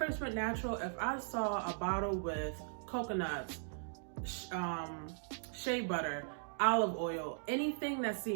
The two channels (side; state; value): left; silent; digital silence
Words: went natural, if I saw a bottle with coconuts, shea butter, olive oil, anything that